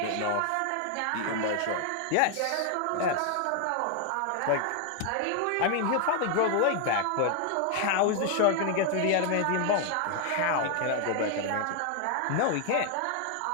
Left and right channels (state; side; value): different; both; correlation 0.00